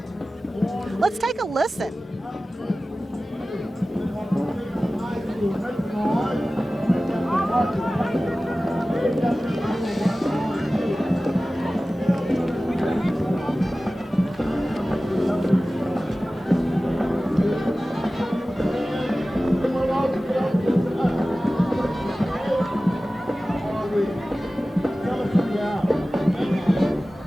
Let's take a listen.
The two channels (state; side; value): normal; both; correlation 0.96